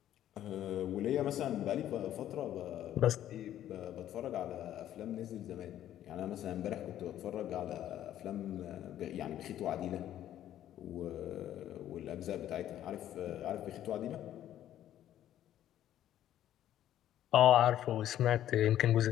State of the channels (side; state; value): right; quieter; 11.9 dB